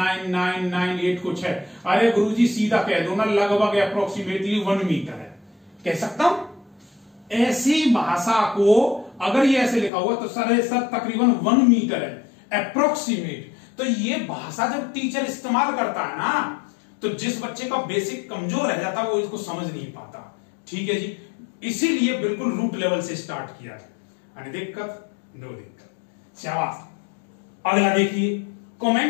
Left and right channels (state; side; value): drops out; right; at 9.9 s